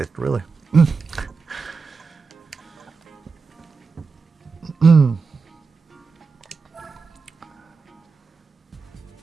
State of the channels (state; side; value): quieter; left; 4.7 dB